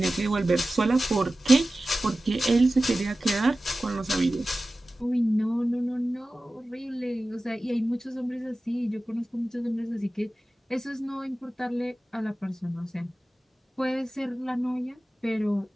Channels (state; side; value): normal; both; correlation 0.96